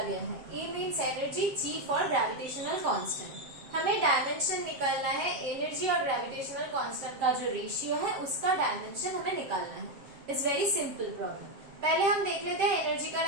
गया है। E means energy, G for gravitational constant. हमें dimension निकालना है। एनर्जी और ग्रेविटेशनल कांस्टेंट का जो रेशियो है उसका डायमेंशन हमें निकालना है। It's very simple problem. पहले हम देख लेते हैं एनर्जी का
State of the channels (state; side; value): late; left; 7.7 ms